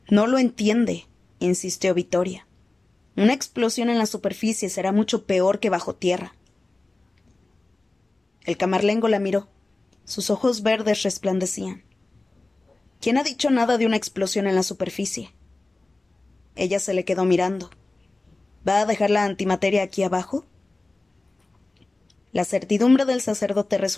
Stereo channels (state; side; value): quieter; right; 3.0 dB